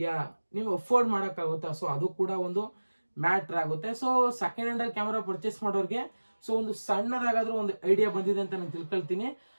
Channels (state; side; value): inverted; both; correlation -1.00